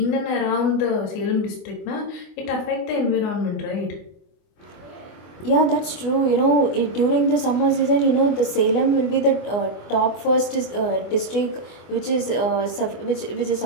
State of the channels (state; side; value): late; right; 24 ms